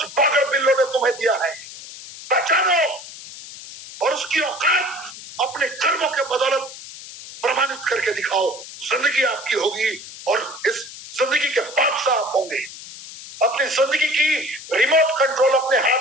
पागल बिल्लों ने तुम्हें दिया है, पहचानो और उसकी औकात अपने कर्मों के बदौलत प्रमाणित करके दिखाओ। जिंदगी आपकी होगी और इस जिंदगी के बादशाह आप होंगे। अपनी जिंदगी की रिमोट कंट्रोल अपने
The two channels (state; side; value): noise; left; hiss, 14 dB below the sound